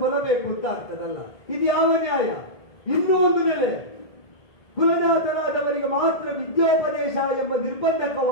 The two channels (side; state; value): right; late; 1.7 ms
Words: ಕೊಲ್ಲಬೇಕು ಅಂತ ಆಗ್ತದಲ್ಲ. ಇದು ಯಾವ ನ್ಯಾಯ? ಇನ್ನೂ ಒಂದು ನೆಲೆ, ಕುಲಜಾತರಾದವರಿಗೆ ಮಾತ್ರ ವಿದ್ಯೋಪದೇಶ ಎಂಬ ನಿರ್ಬಂಧಕ್ಕೆ